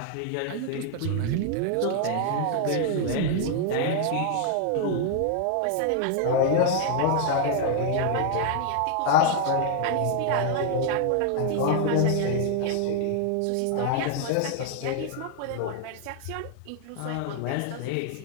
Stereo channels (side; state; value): both; different; correlation 0.00